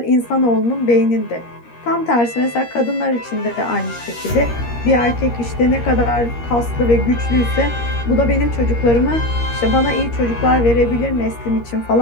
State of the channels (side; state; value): right; late; 13 ms